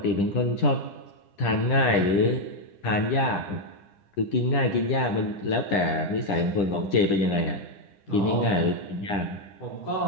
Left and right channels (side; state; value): right; late; 10 ms